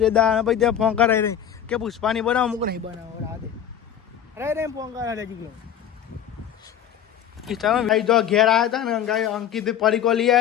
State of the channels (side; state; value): right; quieter; 9.5 dB